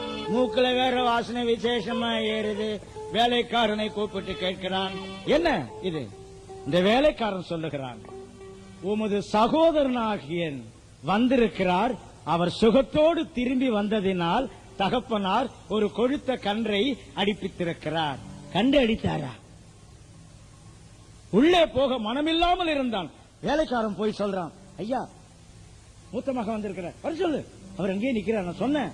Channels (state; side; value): identical; both; correlation 1.00